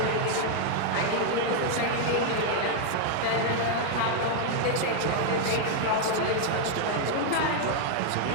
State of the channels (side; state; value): both; different; correlation 0.00